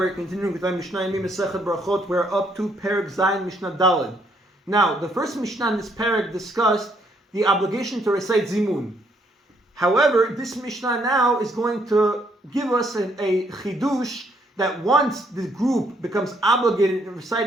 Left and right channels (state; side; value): normal; both; correlation 0.70